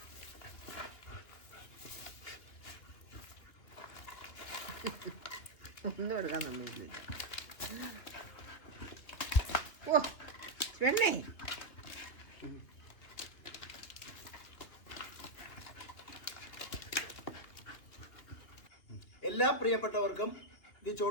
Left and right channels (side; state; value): right; late; 2.7 ms